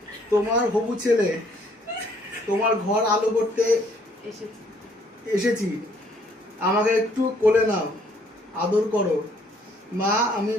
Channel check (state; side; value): normal; both; correlation 0.64